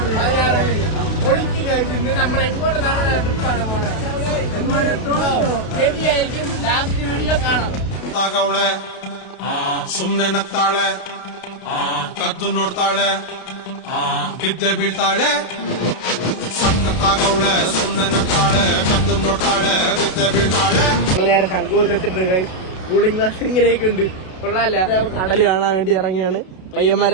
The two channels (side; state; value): right; late; 32 ms